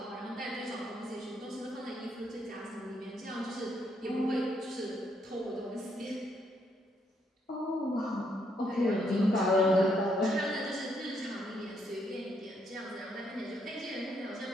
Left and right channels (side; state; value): both; normal; correlation 0.74